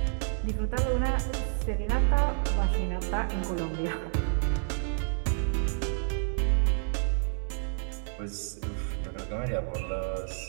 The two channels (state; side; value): silent; left; digital silence